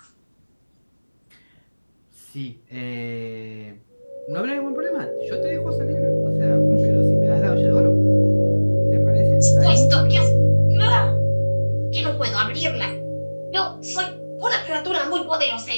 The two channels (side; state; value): both; inverted; correlation -1.00